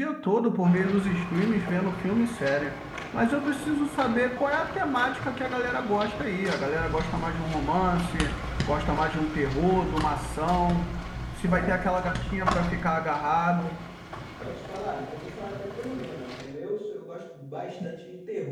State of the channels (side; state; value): both; identical; correlation 1.00